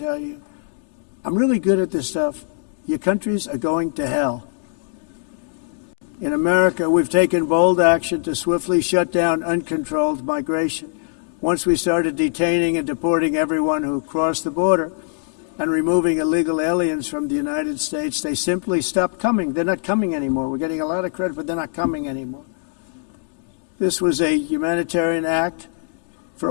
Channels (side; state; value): right; silent; digital silence